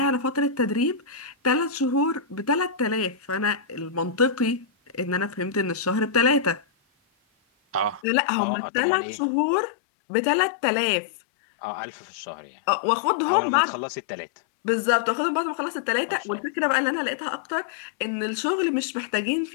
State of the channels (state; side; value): drops out; right; at 8.0 s